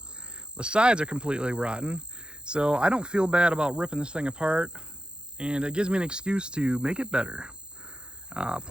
The sides are completely rotten, so I don't feel bad about ripping this thing apart, and it gives me an excuse to make it better.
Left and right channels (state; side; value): late; left; 0.050 ms